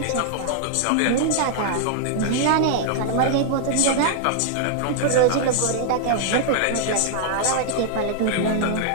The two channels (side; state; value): both; different; correlation -0.01